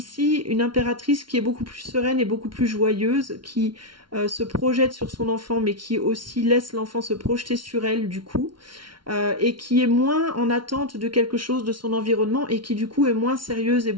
une impératrice qui est beaucoup plus sereine et beaucoup plus joyeuse, qui se projette sur son enfant, mais qui aussi laisse l'enfant se projeter sur elle, du coup. Et qui est moins en attente de quelque chose de son environnement et qui du coup est moins sérieuse et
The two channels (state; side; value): late; left; 0.73 ms